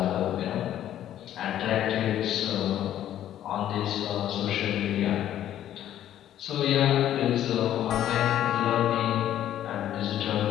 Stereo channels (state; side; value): quieter; right; 11.6 dB